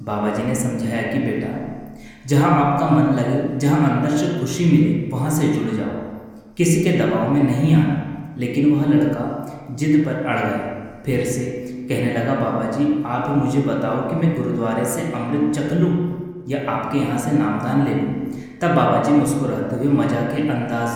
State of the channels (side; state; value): both; identical; correlation 1.00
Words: बाबा जी ने समझाया कि बेटा जहाँ आपका मन लगे, जहाँ अंदर से खुशी मिले, वहाँ से जुड़ जाओ, किसी के दबाव में नहीं आना। लेकिन वह लड़का जिद पर अड़ गया। फिर से कहने लगा, बाबा जी आप ही मुझे बताओ कि मैं गुरुद्वारे से अमृत चख लूँ या आपके यहाँ से नामदान ले लूँ। तब बाबा जी मुस्कुराते हुए मजाक के